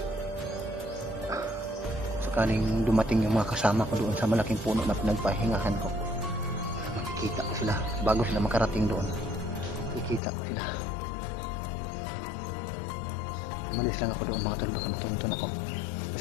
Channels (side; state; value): right; drops out; at 10.2 s